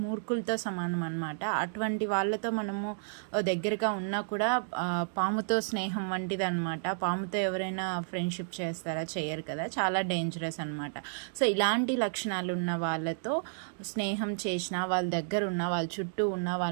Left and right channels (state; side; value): silent; left; digital silence